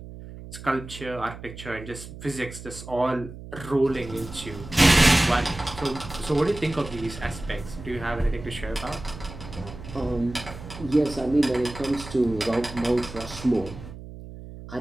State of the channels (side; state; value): right; noise; hum, 13 dB below the sound